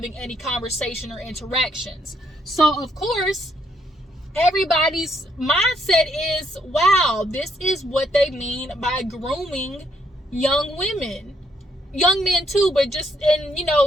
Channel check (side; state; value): both; normal; correlation 0.73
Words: any conversation or interactions. So, of course, everybody's mindset is, wow, this is what they mean by grooming young women. Young men too, but just in,